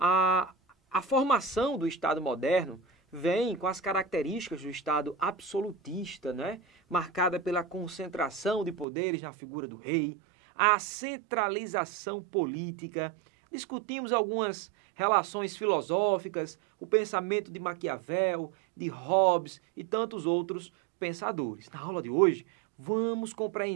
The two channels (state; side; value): drops out; left; at 8.8 s